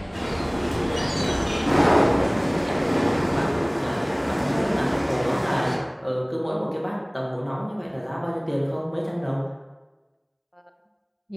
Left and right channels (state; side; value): identical; both; correlation 1.00